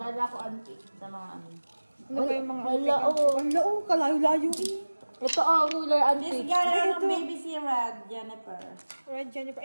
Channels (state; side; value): inverted; both; correlation -1.00